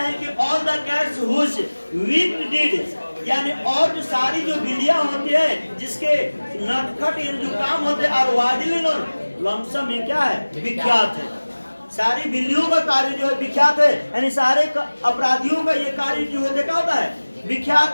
कि all the cats whose weak deeds, यानी और जो सारी जो बिल्लियां होती है जिसके नटखट जो काम होते हैं और वादिलिन और लमसम में क्या है, विख्यात है। सारी बिल्लियों का कार्य जो है विख्यात है, यानी सारे अपराधियों का ये कार्य जो है क्या होता है,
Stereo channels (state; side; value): inverted; both; correlation -1.00